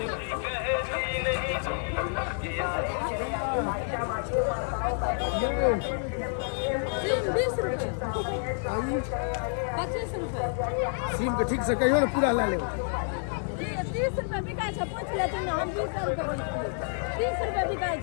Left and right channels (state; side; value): silent; right; 59 dB below the other